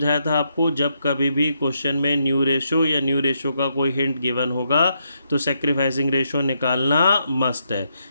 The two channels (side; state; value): both; inverted; correlation -0.79